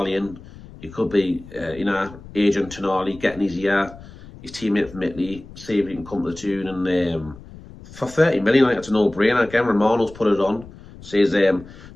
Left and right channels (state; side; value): noise; left; rumble, 18 dB below the sound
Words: He could be, you know, agent Tonali, getting his year. His teammate from Italy, see if he can come to the Toon. And for 30 million, I think it's a no-brainer. Again, Romano's put it on. Says,